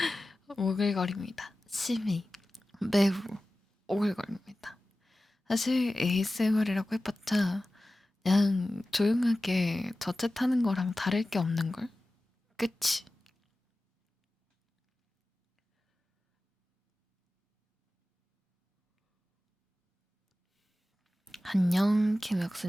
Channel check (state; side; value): normal; both; correlation 0.95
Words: 오글거립니다. 심히 매우 오글거립니다. 사실 ASMR이라고 해봤자 그냥 조용하게 저챗하는 거랑 다를 게 없는걸? 그치? 안녕